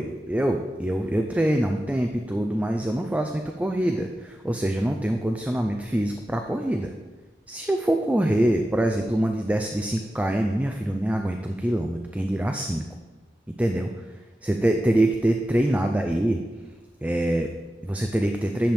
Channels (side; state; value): both; normal; correlation 0.92